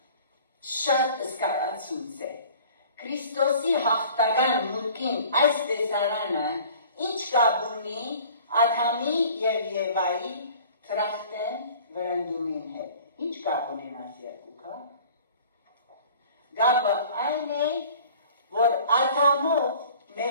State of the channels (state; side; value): inverted; both; correlation -0.48